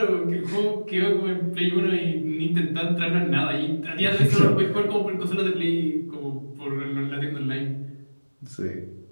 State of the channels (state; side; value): inverted; both; correlation -1.00